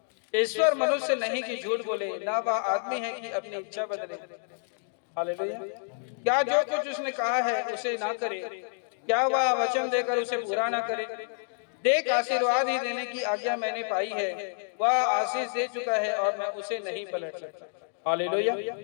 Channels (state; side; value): silent; right; digital silence